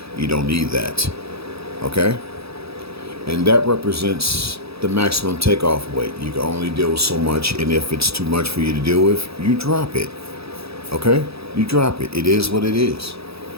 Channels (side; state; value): left; late; 0.77 ms